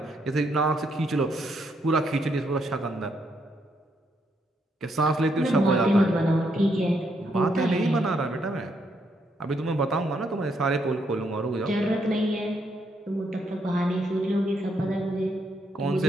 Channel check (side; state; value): both; normal; correlation 0.76